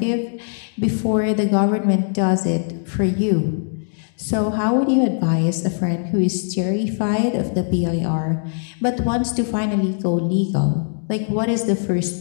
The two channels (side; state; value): right; silent; digital silence